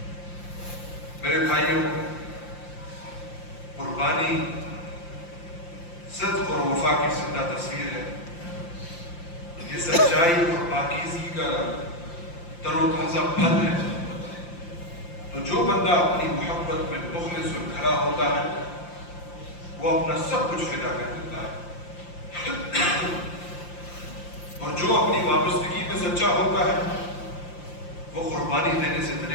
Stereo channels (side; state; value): right; late; 5.8 ms